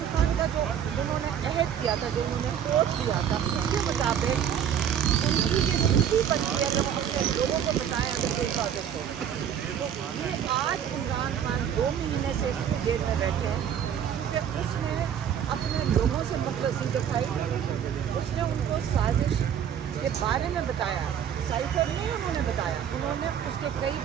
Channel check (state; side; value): quieter; left; 8.9 dB